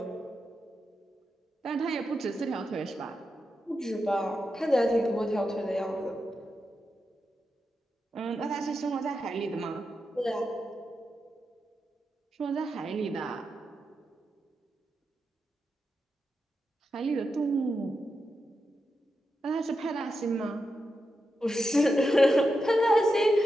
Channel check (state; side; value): normal; both; correlation 0.88